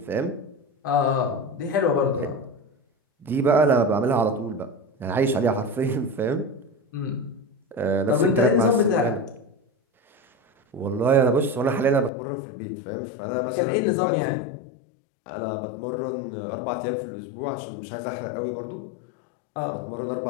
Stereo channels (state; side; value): drops out; right; at 12.1 s